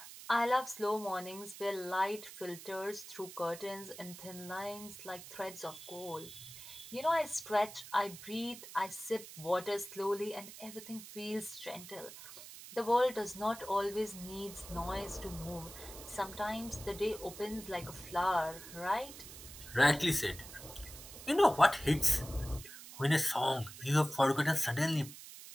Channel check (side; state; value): right; noise; hiss, 14 dB below the sound